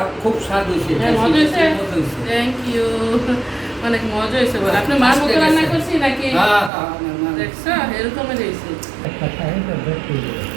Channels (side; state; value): left; drops out; at 6.7 s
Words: খুব স্বাদ হয়েছে। হ্যাঁ, মজা হয়েছে। থ্যাংক ইউ, অনেক মজা হয়েছে। বলে আপনি মার মতো রান্না করছি নাকি? দেখছো এরকমের হয়েছে।